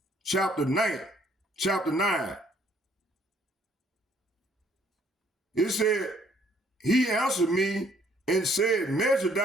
chapter 9. It said, he answered me and said, measure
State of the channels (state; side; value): normal; both; correlation 0.64